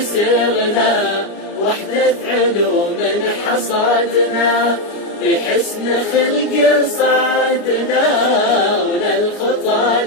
سرنا وحدة علوم حصادنا، بحسن خلق صعدنا وللخطى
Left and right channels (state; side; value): late; right; 29 ms